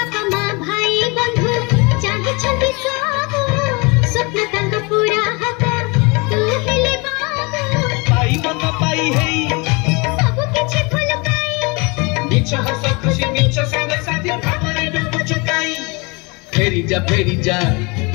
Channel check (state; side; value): quieter; right; 28.6 dB